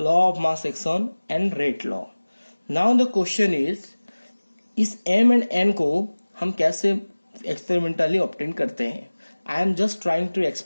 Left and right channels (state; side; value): inverted; both; correlation -1.00